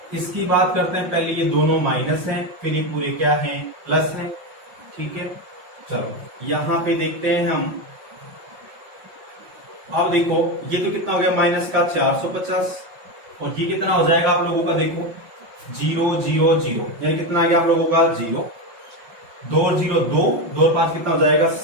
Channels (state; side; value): late; left; 5.6 ms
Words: इसकी बात करते हैं, पहले ये दोनों माइनस हैं, फिर ये पूरे क्या हैं प्लस हैं, ठीक है। चलो यहां पे देखते हैं हम, अब देखो ये तो कितना हो गया माइनस का 450, और ये कितना हो जाएगा आप लोगों का, देखो 0 0 0, यानी कितना आ गया आप लोगों का 0, 2 और 0 2, 2 और 5 कितना हो जाएगा